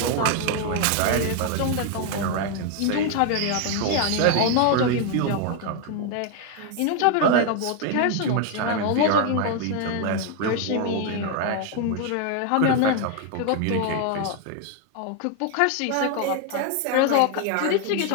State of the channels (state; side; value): different; both; correlation 0.01